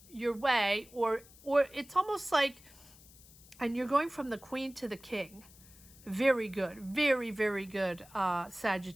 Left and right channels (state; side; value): noise; left; hiss, 23 dB below the sound